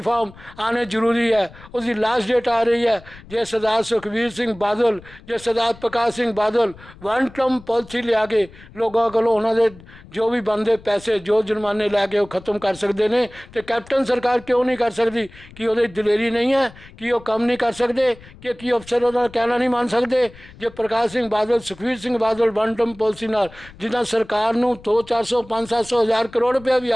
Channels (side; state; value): left; noise; rumble, 21 dB below the sound